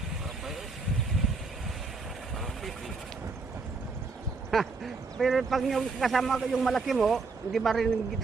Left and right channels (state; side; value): quieter; left; 4.3 dB